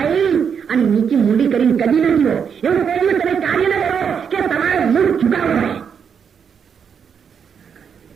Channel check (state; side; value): quieter; left; 7.1 dB